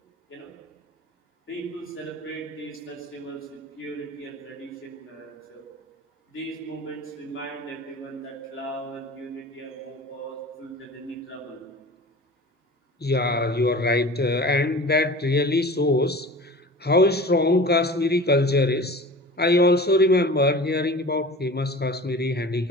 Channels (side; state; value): both; normal; correlation 0.39